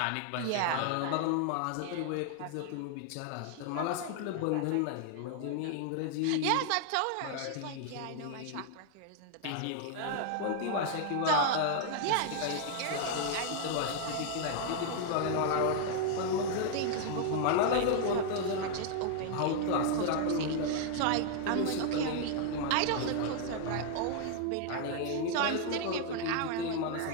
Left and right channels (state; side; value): different; both; correlation 0.00